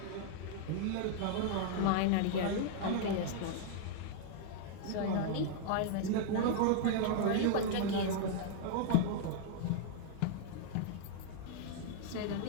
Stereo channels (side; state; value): both; different; correlation -0.01